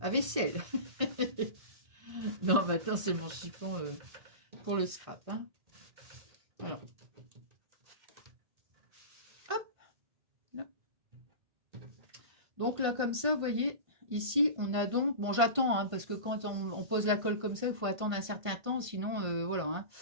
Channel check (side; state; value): left; late; 1.5 ms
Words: vaisselle. Non, maintenant, c'est mon chiffon pour le scrap. Hein. Alors. Donc là, comme ça, vous voyez, ici, on a donc... Bon, j'attends, hein, parce que quand on pose la colle comme ça, il faut attendre un certain temps, sinon, voilà. Hein.